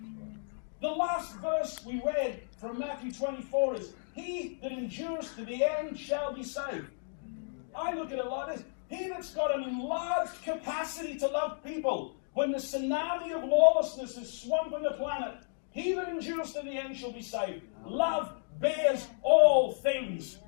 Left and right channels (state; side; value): silent; right; digital silence